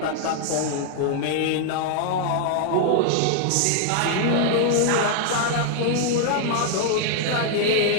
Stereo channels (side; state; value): both; different; correlation 0.00